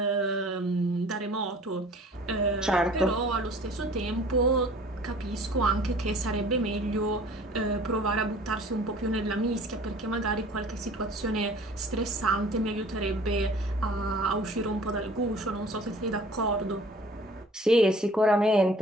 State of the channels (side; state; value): both; normal; correlation 0.49